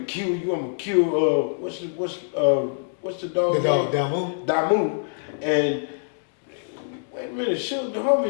kill you. I'm gonna kill what's the dog? The dog, Damu. Damu. And wait a minute, Suge, the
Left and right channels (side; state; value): right; silent; digital silence